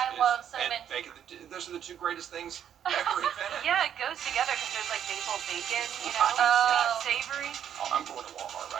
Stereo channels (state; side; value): quieter; left; 9.4 dB